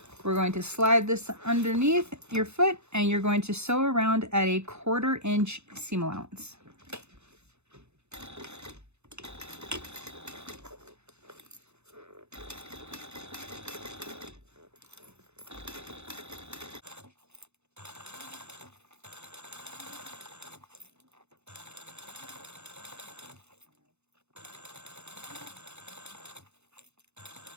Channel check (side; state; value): left; late; 0.81 ms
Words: we're going to slide this underneath your foot, and you're going to sew around at a 1/4 inch seam allowance.